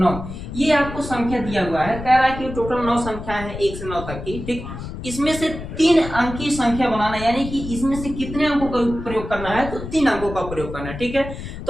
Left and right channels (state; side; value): noise; left; rumble, 9 dB below the sound